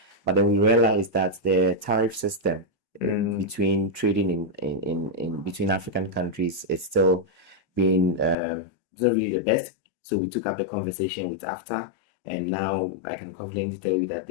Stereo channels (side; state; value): right; drops out; at 8.3 s